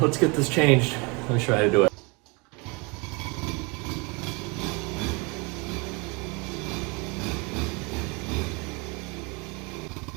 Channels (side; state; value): left; quieter; 29.4 dB